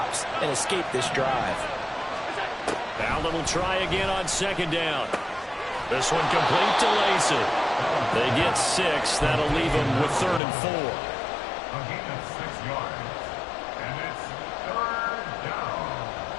and escape this drive. Allen will try again on second down. This one complete to Lacy. They get 6. That'll leave them with 3rd and 4. A gain of 6 yards. And it's 3rd down.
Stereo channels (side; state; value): right; drops out; at 10.4 s